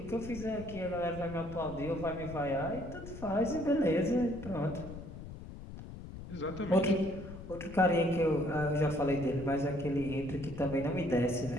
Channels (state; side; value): noise; left; rumble, 12 dB below the sound